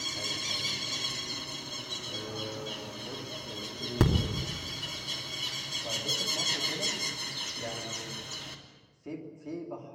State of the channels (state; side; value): identical; both; correlation 1.00